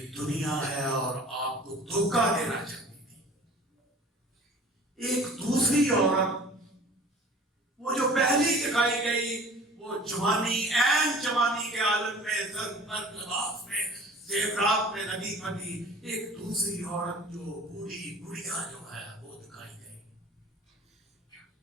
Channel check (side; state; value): both; normal; correlation 0.45